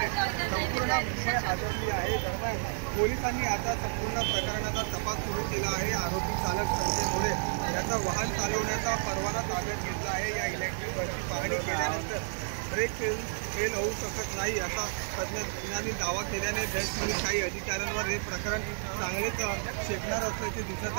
संपूर्ण मुंबई हादरली आहे। दरम्यान पोलिसांनी आता संपूर्ण प्रकरणाचा तपास सुरू केला आहे। आरोपी चालक संजय मोरे याचा वाहन चालवण्याचा परवाना ताब्यात घेतला आहे। या इलेक्ट्रिक बसची पाहणी केल्यानंतर ब्रेक फेल होऊ शकत नाही असा तज्ज्ञांनी दावा केल्याने बेस्टमधील काही अधिकाऱ्यांवर हे प्रकरण चांगलेच शेकणार असल्याचे दिसत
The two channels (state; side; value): silent; left; 57 dB below the other